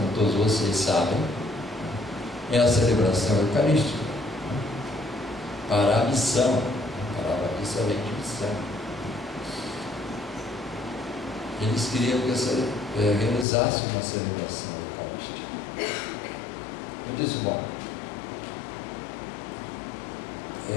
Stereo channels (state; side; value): drops out; right; at 13.5 s